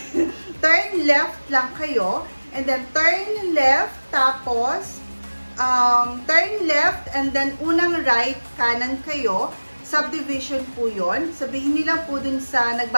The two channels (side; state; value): both; inverted; correlation -1.00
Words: left lang kayo. And then, turn left. Tapos, turn left. And then, unang right, kanan kayo. Subdivision po yun. Sabihin nila po dun sa